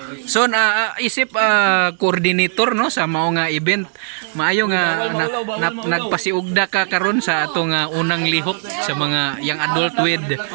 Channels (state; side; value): silent; left; digital silence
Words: So isip coordinator no sa mao nga event. Maayo nga nagpasiugda ka karon sa atong unang lihok sa mga young adult with